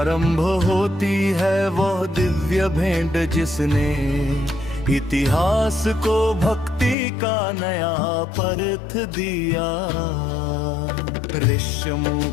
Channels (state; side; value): drops out; right; at 7.0 s